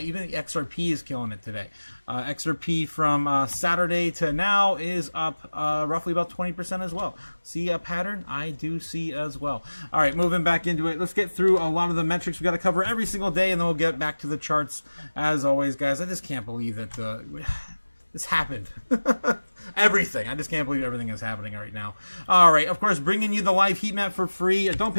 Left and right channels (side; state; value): both; inverted; correlation -1.00